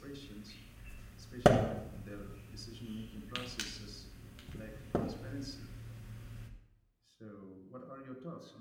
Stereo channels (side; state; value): both; identical; correlation 1.00